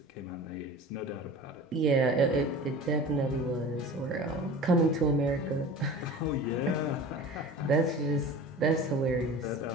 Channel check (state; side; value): normal; both; correlation 0.37